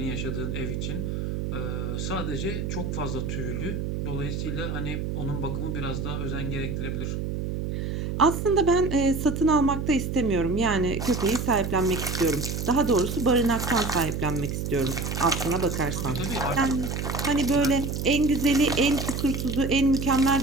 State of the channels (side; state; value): right; noise; hum, 3 dB below the sound